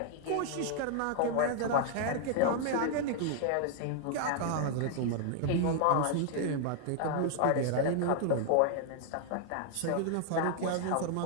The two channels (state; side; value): different; both; correlation 0.00